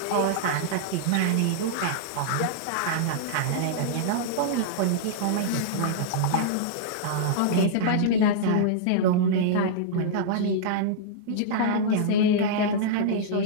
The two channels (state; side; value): different; both; correlation -0.02